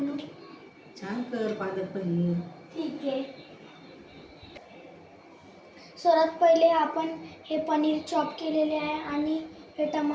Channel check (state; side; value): identical; both; correlation 1.00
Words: छान कर पालक पनीर. ठीक आहे. सर्वात पहिले आपण हे पनीर चॉप केलेले आहे आणि हे